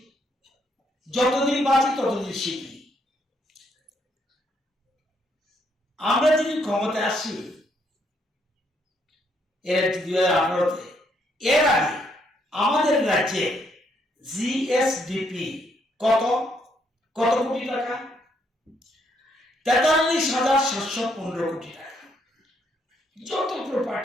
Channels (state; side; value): normal; both; correlation 0.73